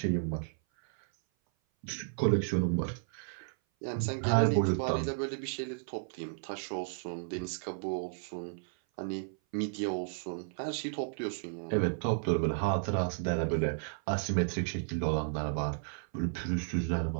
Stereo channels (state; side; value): silent; left; 56 dB below the other